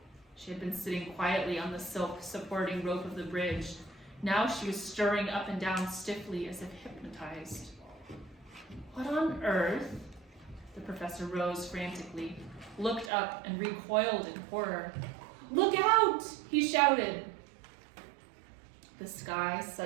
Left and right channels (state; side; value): drops out; left; at 13.1 s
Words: She had been sitting quietly on the silk supporting rope of the bridge. Now she was stirring up and down stiffly as if hypnotized. "What on earth?" The professor rose frantically, looked up, and recoiled in horror. "Look out!" he shouted. The sky